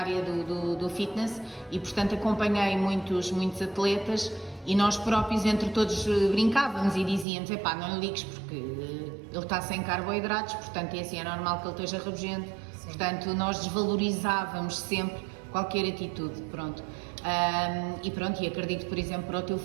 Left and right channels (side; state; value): left; drops out; at 7.2 s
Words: do fitness e, portanto, acompanhei muitos atletas e nós próprios, entre todos, brincávamos e dizíamos, epá, não lhe ligues porque ele está sem carboidratos, portanto, é assim, é normal que ele esteja rabugento. Sim. Portanto, nós desvalorizávamos sempre qualquer atitude, pronto. E acredito, por exemplo, para o teu